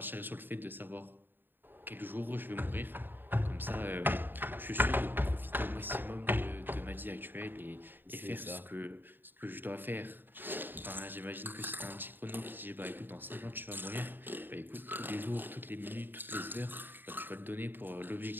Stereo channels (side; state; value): left; late; 0.094 ms